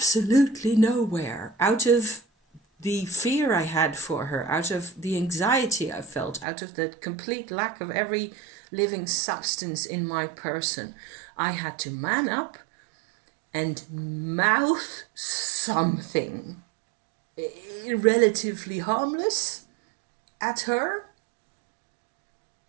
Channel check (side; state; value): left; drops out; at 6.5 s